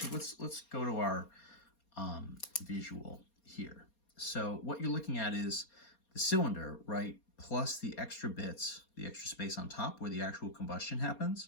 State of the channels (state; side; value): late; right; 4.3 ms